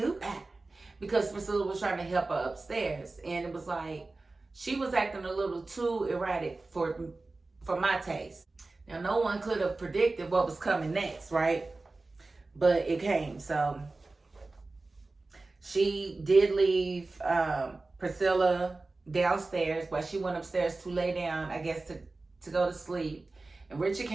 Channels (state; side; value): quieter; left; 3.4 dB